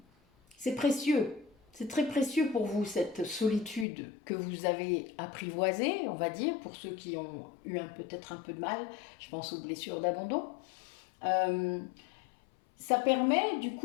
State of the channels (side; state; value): right; drops out; at 3.9 s